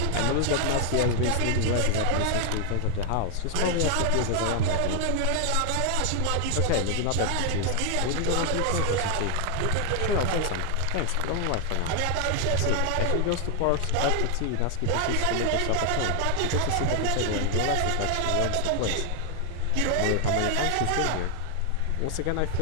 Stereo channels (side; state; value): both; different; correlation 0.00